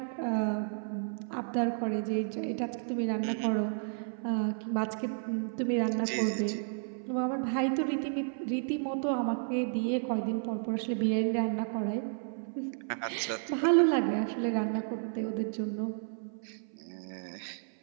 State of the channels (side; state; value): left; silent; 55 dB below the other